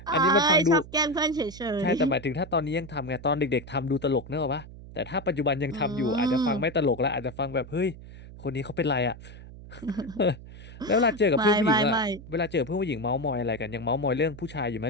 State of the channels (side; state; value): right; noise; hum, 16 dB below the sound